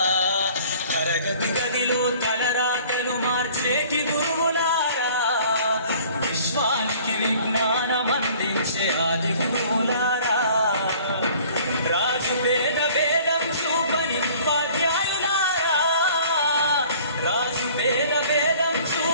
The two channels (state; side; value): inverted; both; correlation -0.52